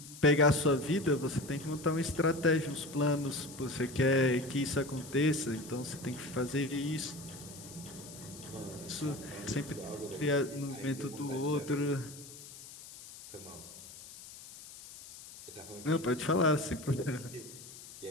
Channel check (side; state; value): left; noise; hiss, 16 dB below the sound